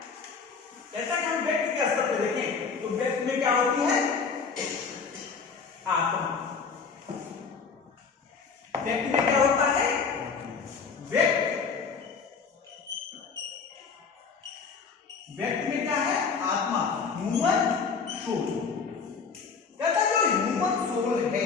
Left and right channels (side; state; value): right; quieter; 5.4 dB